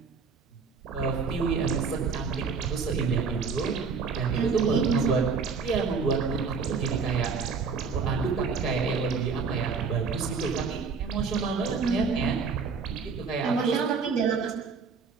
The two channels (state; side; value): quieter; left; 5.2 dB